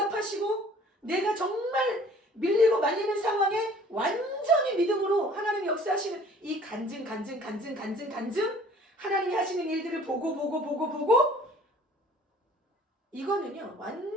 내가 정말 밀리고 말리는 상황에 완전히 믿음으로 하나님이 역사하시는 이 간증 하나님이 하시는 일들을 보고 이거는요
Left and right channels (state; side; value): normal; both; correlation 0.52